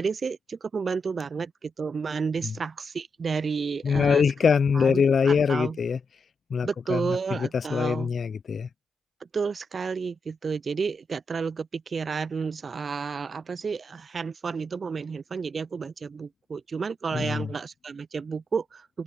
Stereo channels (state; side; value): normal; both; correlation 0.83